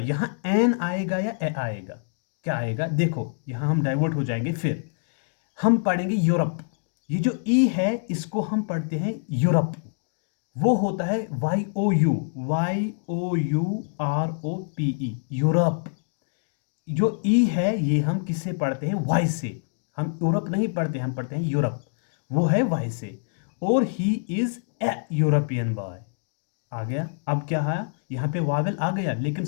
एन आएगा या ए आएगा? क्या आएगा? देखो, यहां हम डाइवर्ट हो जाएंगे, फिर हम पढ़ेंगे यूरोप। ये जो ई है इसको हम पढ़ते हैं यूरोप, वो होता है YOUROPE, यूरोप। जो ई है ये हम किससे पढ़ते हैं? वाई से। हम यूरोप नहीं पढ़ते, हम पढ़ते हैं यूरोप, वो है वाई से। और he is a European boy आ गया। अब क्या है? यहाँ पे वावेल आ गया, लेकिन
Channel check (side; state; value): right; silent; digital silence